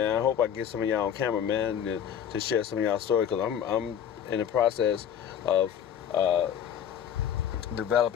I hope I get some of y'all on camera, man, to share some of y'all stories, because I'm in the process of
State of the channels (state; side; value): quieter; right; 9.0 dB